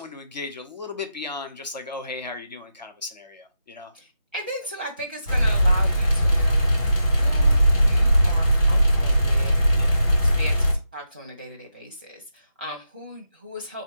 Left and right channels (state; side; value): inverted; both; correlation -0.88